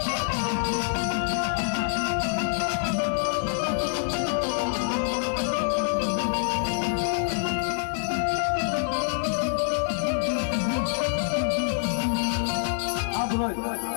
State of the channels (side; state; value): right; silent; 61 dB below the other